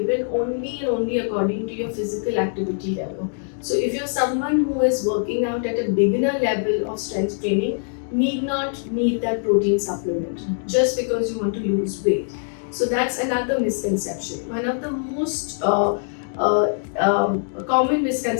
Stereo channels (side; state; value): right; silent; digital silence